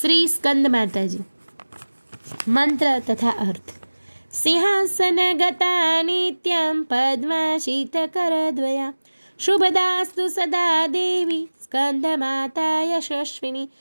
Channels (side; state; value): both; inverted; correlation -1.00